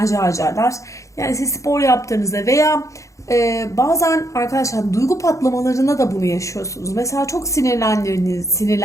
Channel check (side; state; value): right; late; 0.15 ms